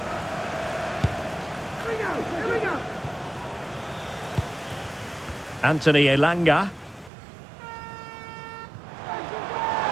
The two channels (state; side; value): drops out; left; at 7.1 s